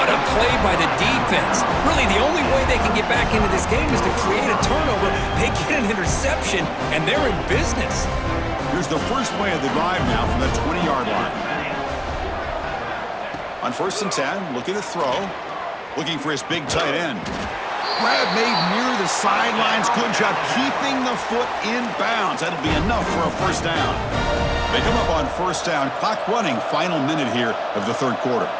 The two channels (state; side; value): identical; both; correlation 1.00